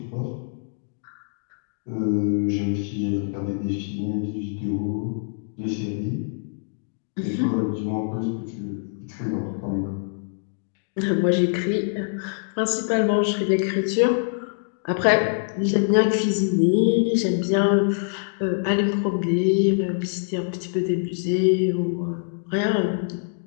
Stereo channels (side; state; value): right; silent; digital silence